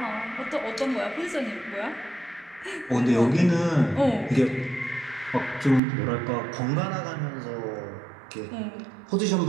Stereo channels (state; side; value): drops out; left; at 5.8 s